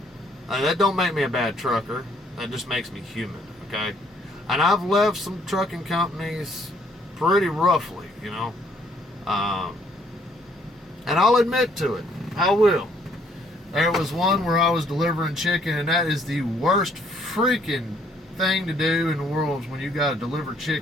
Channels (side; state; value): both; normal; correlation 0.66